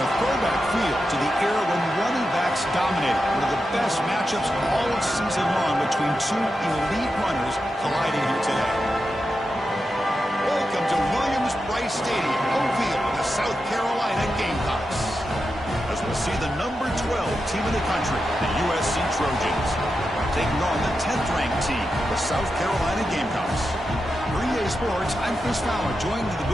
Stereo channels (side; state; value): both; normal; correlation 0.89